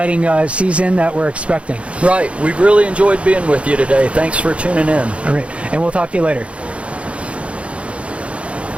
season that we're expecting. Right. We've really enjoyed being with you today. Thanks for tuning in. All right. And we'll talk to you later.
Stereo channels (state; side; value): late; left; 0.061 ms